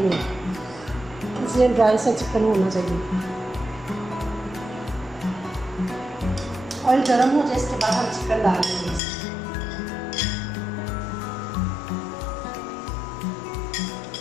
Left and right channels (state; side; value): drops out; right; at 9.0 s